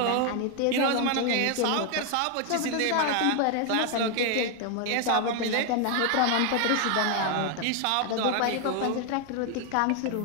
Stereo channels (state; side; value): different; both; correlation 0.01